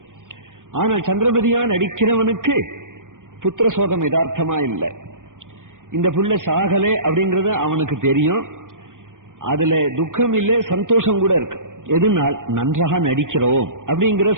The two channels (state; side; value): late; left; 0.88 ms